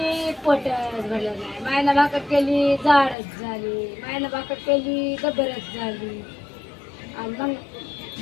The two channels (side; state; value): right; drops out; at 3.2 s